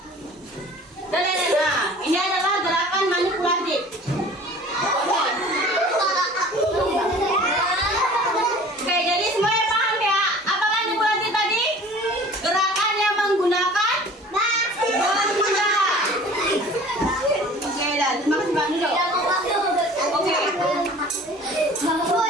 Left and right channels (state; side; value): normal; both; correlation 0.46